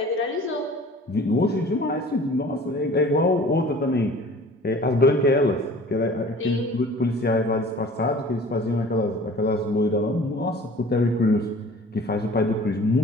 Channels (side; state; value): both; normal; correlation 0.46